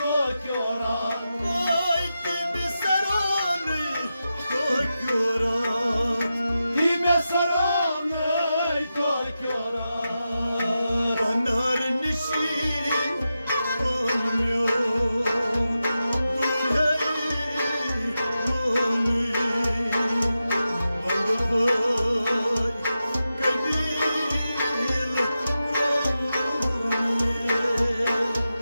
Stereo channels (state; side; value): inverted; both; correlation -0.91